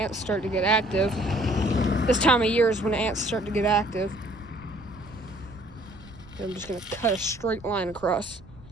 start to get active. This time of year is when ants start to get active. And I'm just gonna cut a straight line across.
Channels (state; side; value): noise; right; rumble, 22 dB below the sound